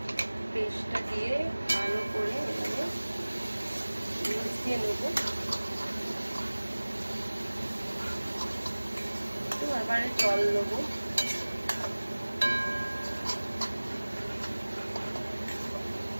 পেস্টটা দিয়ে ভালো করে এখানে মিশিয়ে নেব। তো এবারে জল দেবো।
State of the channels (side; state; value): both; inverted; correlation -1.00